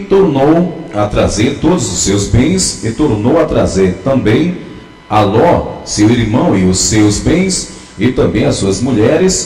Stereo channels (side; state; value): both; identical; correlation 1.00